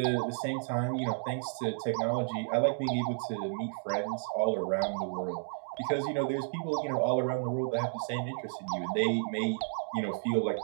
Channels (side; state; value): left; silent; digital silence